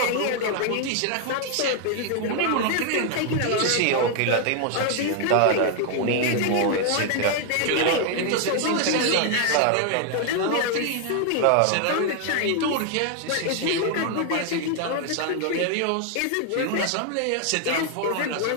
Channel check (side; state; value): both; different; correlation 0.00